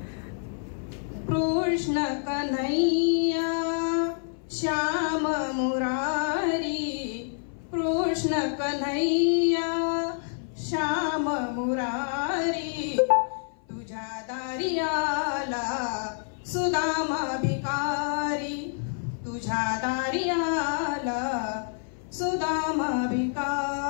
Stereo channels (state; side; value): silent; right; 57 dB below the other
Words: कृष्ण कन्हैया श्याम मुरारी, कृष्ण कन्हैया श्याम मुरारी, तुझ्या दारी आला सुदामा भिकारी, तुझ्या दारी आला सुदामा